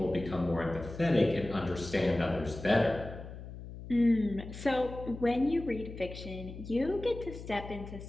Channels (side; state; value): left; noise; hum, 12 dB below the sound